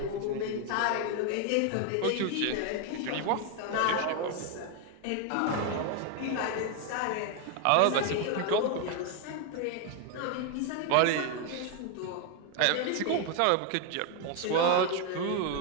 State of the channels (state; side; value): different; both; correlation 0.01